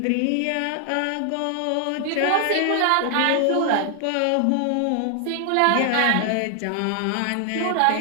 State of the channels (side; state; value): both; different; correlation 0.00